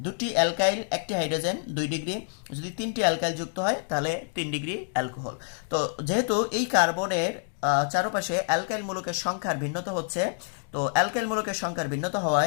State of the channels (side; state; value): right; silent; 60 dB below the other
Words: 2টি অ্যালকাইল 1টি হাইড্রোজেন 2 ডিগ্রি, যদি 3টি অ্যালকাইল যুক্ত হয় তাহলে 3 ডিগ্রি অ্যালকোহল। তো যেহেতু এই কার্বনের চারপাশে অ্যালকাইল মূলকের সংখ্যার ভিন্নতা হচ্ছে, তো অ্যালকাইল মূলকের সংখ্যার ভিন্নতা